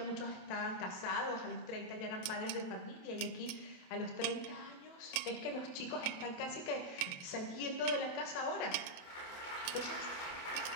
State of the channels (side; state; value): right; late; 27 ms